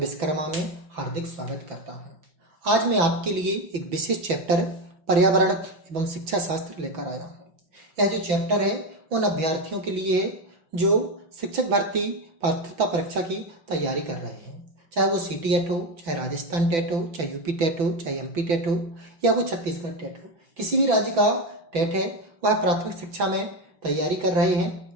में हार्दिक स्वागत करता हूं। आज मैं आपके लिए एक विशेष चैप्टर पर्यावरण एवं शिक्षा शास्त्र लेकर आया हूं। यह जो चैप्टर है उन अभ्यर्थियों के लिए है जो शिक्षक भर्ती पात्रता परीक्षा की तैयारी कर रहे हैं, चाहे वो CTET हो, चाहे राजस्थान टेट हो, चाहे यूपी टेट हो, चाहे MP टेट हो या वो छत्तीसगढ़ टेट हो। किसी भी राज्य का टेट है वह प्राथमिक शिक्षा में तैयारी कर रहे हैं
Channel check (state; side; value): late; left; 6.0 ms